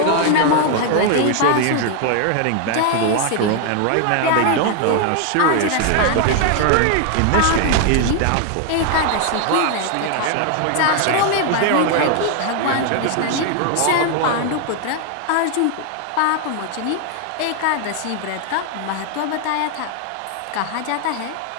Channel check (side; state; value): both; different; correlation 0.00